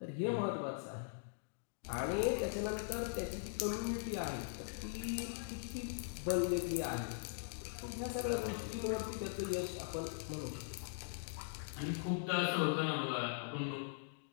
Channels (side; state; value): right; silent; digital silence